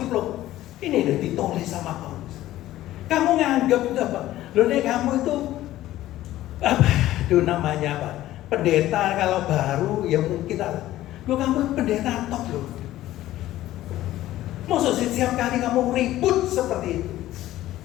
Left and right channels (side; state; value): right; quieter; 14.7 dB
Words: Ini udah ditulis sama Paulus. Kamu nganggap itu apa? Loh nih kamu itu apa? Itu namanya apa? Pendeta kalau baru ya mungkin lo kamu pendeta top loh. Maksud setiap kali kamu ribut seperti itu.